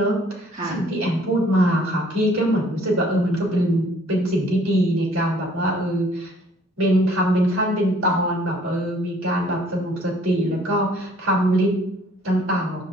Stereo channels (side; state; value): both; normal; correlation 0.58